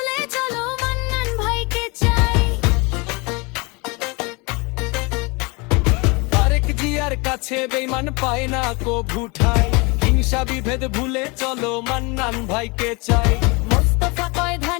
কাছে বেঈমান পায় না কো ভুঠাই। হিংসা বিভেদ ভুলে চলো মান্নান ভাইকে চাই। মোস্তফা কয়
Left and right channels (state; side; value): quieter; right; 28.1 dB